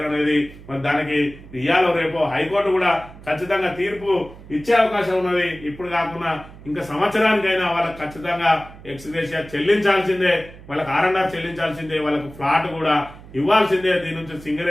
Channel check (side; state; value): right; noise; hum, 18 dB below the sound